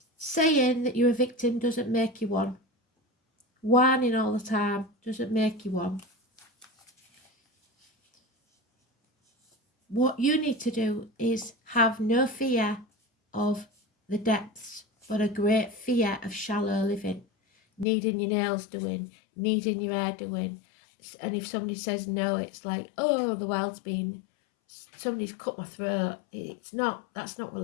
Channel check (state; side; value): drops out; right; at 17.9 s